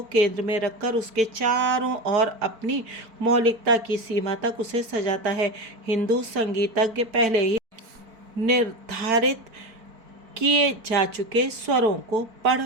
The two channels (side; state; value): left; late; 4.5 ms